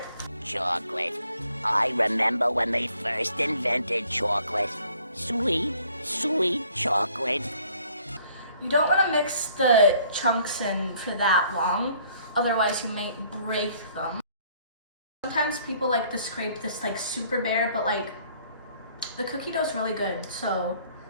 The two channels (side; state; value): both; inverted; correlation -0.61